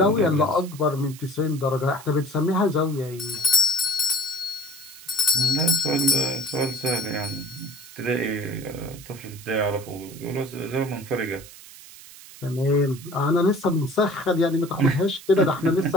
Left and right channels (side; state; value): right; noise; hiss, 18 dB below the sound